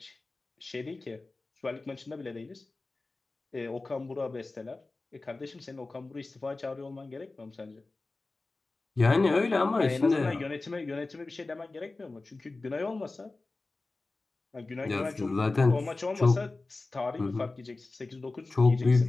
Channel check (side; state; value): right; quieter; 3.4 dB